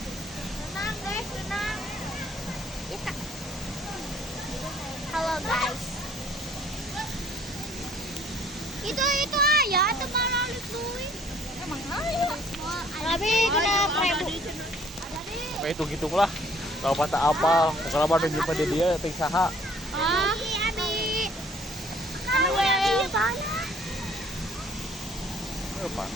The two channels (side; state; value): both; normal; correlation 0.58